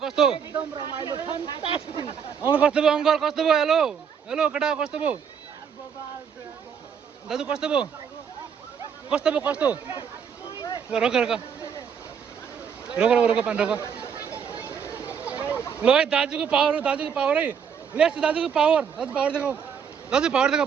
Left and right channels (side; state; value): left; quieter; 7.2 dB